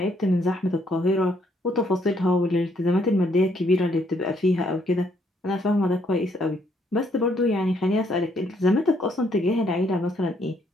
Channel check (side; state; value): both; normal; correlation 0.70